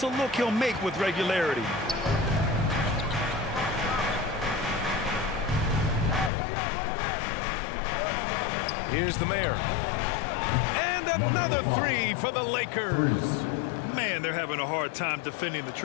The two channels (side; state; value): right; drops out; at 6.3 s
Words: a look he'll make with regularity. Here's the mayor. And another three for the Lakers. Man, they're having a hard time defending the